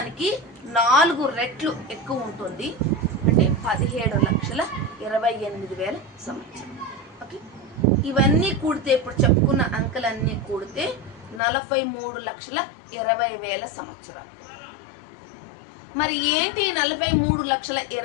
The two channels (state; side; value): drops out; right; at 11.4 s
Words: 4 రెట్లు ఎక్కువ ఉంటుంది. అంటే 17,28,000 సంవత్సరం. ఓకే. ఇవన్నీ కూడితే, ఇప్పుడు చెప్పుకున్న అంకెలన్నీ కూడితే 43,20,000 సంవత్సరాలు. మరి ఏంటి